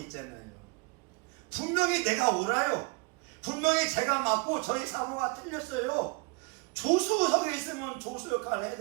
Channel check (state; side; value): quieter; left; 29.1 dB